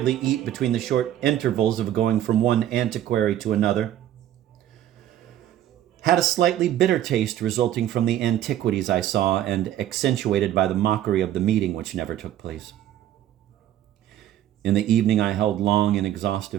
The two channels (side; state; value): left; quieter; 12.0 dB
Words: eat between the short intervals of going from one antiquary to another, had a slightly bitter taste resulting from the antiquities I saw and accentuated by the mockery of the meeting which never took place. In the evening, I held long and